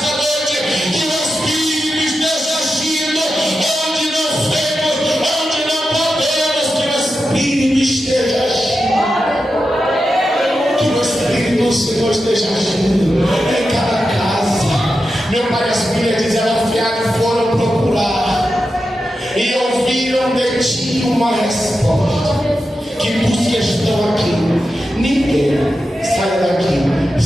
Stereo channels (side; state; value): both; normal; correlation 0.90